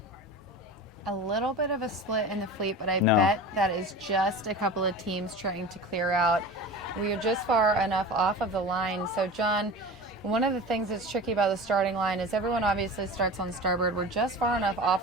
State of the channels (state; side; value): normal; both; correlation 0.33